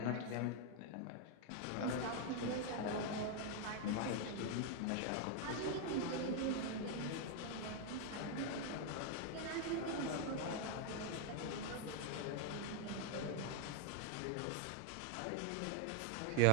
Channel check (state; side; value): different; both; correlation 0.00